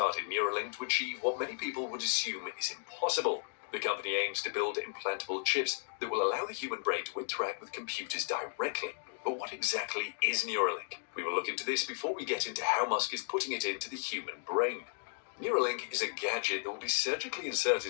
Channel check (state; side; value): silent; right; digital silence